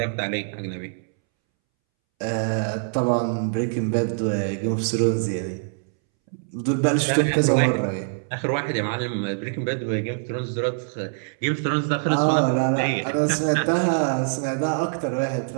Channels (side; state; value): left; silent; 63 dB below the other